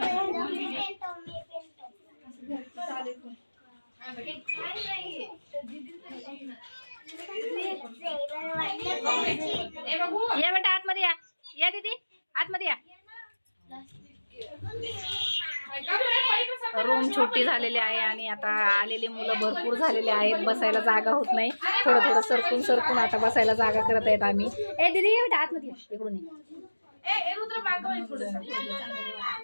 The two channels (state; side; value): inverted; both; correlation -1.00